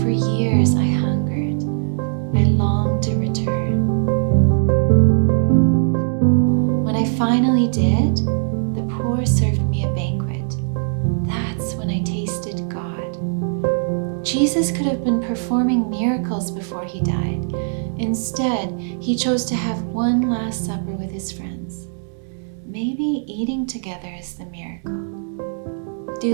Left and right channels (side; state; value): left; silent; digital silence